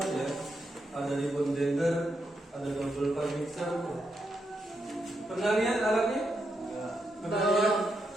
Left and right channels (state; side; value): normal; both; correlation 0.82